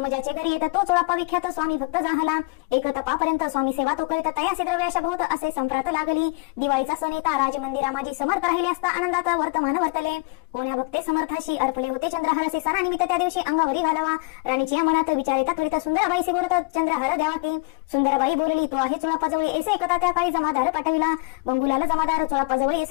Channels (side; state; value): right; quieter; 29.2 dB